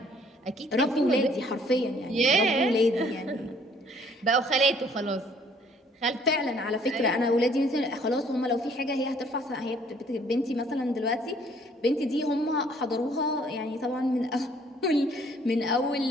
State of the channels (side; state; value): both; normal; correlation 0.61